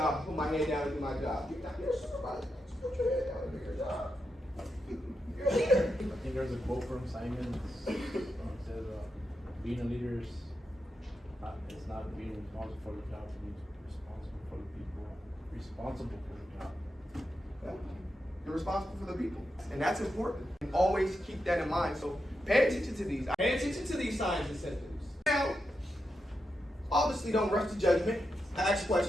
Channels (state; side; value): normal; both; correlation 0.87